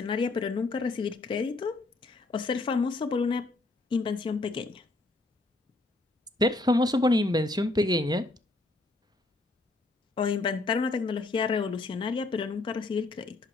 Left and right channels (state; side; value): quieter; right; 3.1 dB